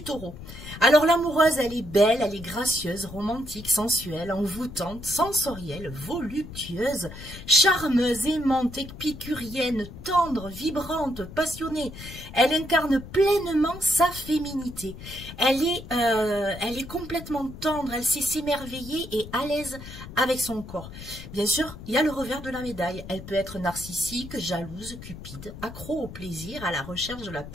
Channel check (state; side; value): noise; left; rumble, 13 dB below the sound